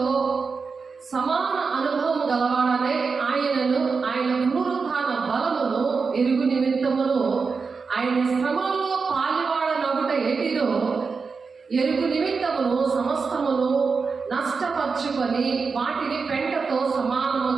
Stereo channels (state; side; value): quieter; left; 4.9 dB